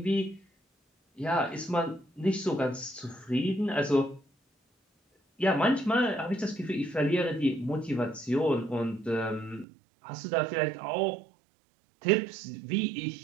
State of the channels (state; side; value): drops out; left; at 9.7 s